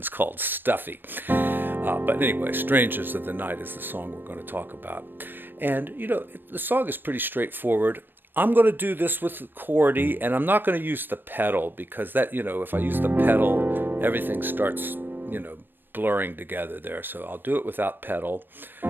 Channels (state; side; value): late; left; 0.096 ms